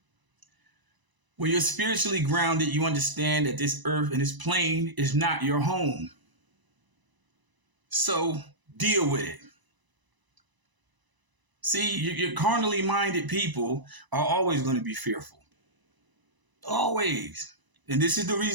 When you're spiritually grounded, you understand that this earth and this plane is not your home. So deal with it. See, your carnally minded people are always going to be fearful. Always. And this is the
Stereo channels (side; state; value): left; late; 1.0 ms